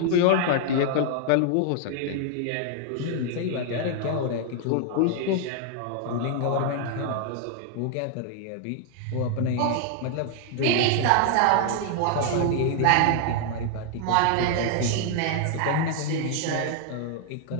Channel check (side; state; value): both; different; correlation 0.00